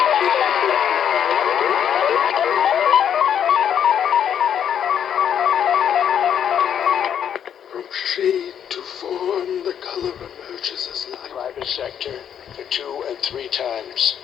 From shade to form, the color emerges as light. Private sector for 2 and 3 times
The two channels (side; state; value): right; quieter; 8.9 dB